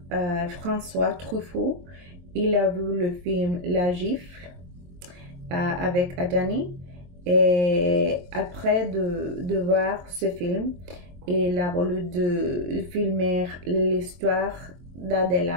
François Truffaut, il a vu le film La Gifle avec Adjani. Et après de voir ce film, il a voulu de filmer l'histoire d'Adèle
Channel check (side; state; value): left; late; 22 ms